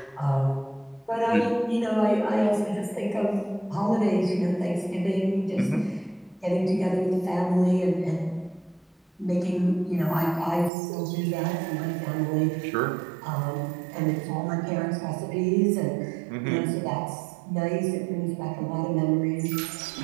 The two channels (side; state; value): left; drops out; at 10.7 s